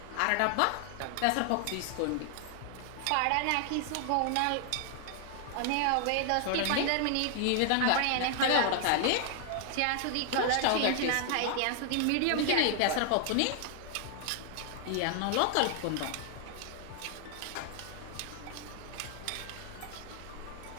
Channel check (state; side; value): different; both; correlation 0.00